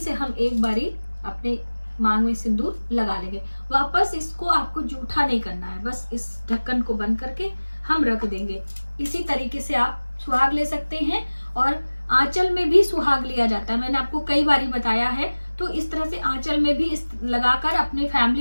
हम एक बारी अपने मांग में सिंदूर लगा लेंगे। वापस इसको आपको जूठा नहीं करना है, बस इस ढक्कन को बंद करके हम रख देंगे। इसी तरीके से आप सुहाग ले सकते हैं, और आंचल में भी सुहाग लिया जाता है, मैंने आपको कई बारी बताया है। तो इस तरह से आंचल में भी इस लगाकर अपने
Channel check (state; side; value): inverted; both; correlation -1.00